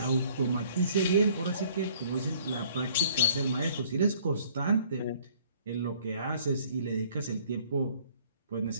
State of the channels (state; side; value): inverted; both; correlation -0.58